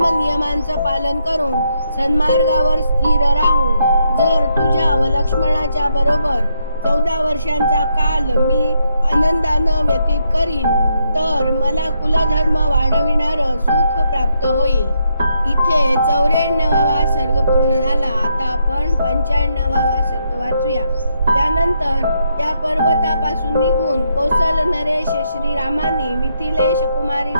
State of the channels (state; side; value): inverted; both; correlation -0.78